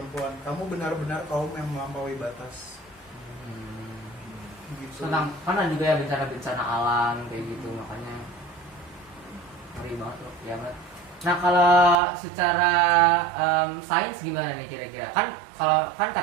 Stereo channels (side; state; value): left; drops out; at 12.0 s